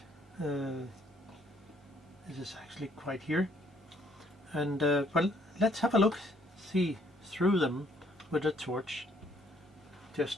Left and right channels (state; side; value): normal; both; correlation 0.65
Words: This is actually quite here, and well, let's have a look, see through them with a torch,